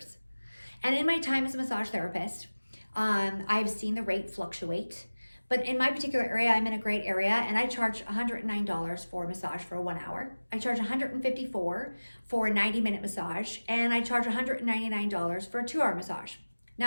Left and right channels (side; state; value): both; inverted; correlation -1.00